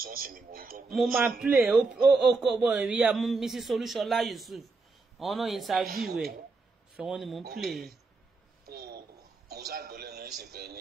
sọ́ọ̀sì ni mo ń gbọ́. mo máa play ó kọ́ bọ̀ ìyá Mrs. Olúṣọlá Yusuf àwọn náà interview ẹ̀ sọ wọ́n ni mo ń play. mo ṣàgbọ́ lẹ́nu ìsìnkẹ́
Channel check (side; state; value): left; quieter; 3.9 dB